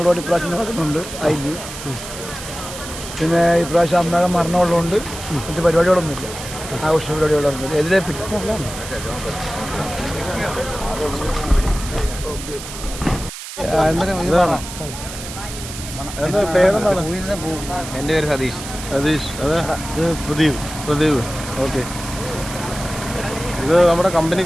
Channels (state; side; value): noise; right; hiss, 11 dB below the sound